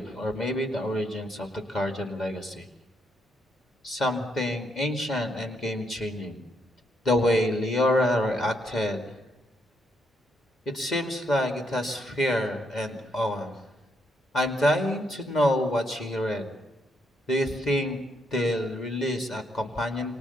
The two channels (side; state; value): both; normal; correlation 0.75